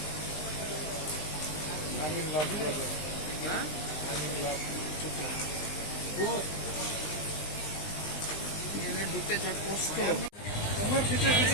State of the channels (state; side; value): late; right; 19 ms